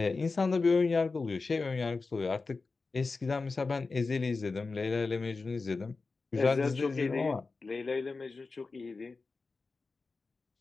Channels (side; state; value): right; quieter; 4.0 dB